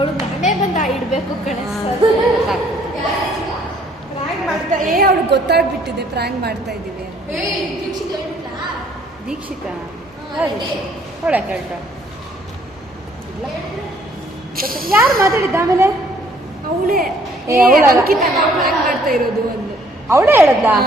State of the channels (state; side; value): normal; both; correlation 0.62